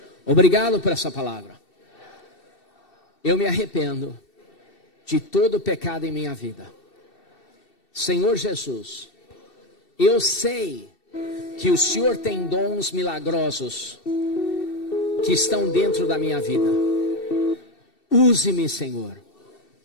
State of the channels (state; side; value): late; right; 2.7 ms